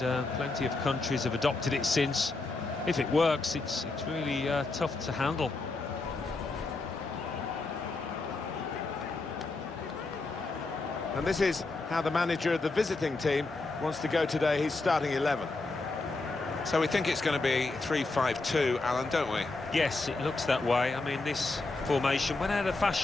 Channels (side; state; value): right; quieter; 3.4 dB